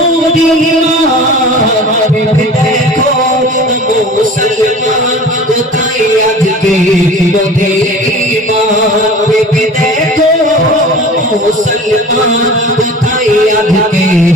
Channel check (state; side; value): normal; both; correlation 0.40